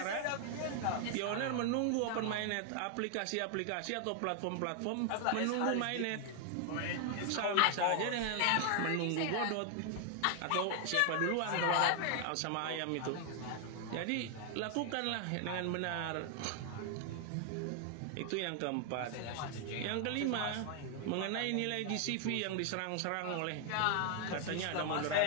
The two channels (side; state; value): both; different; correlation 0.00